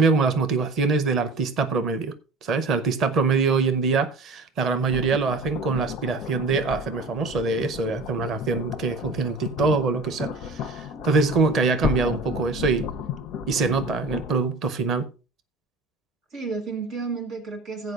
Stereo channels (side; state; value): left; quieter; 3.3 dB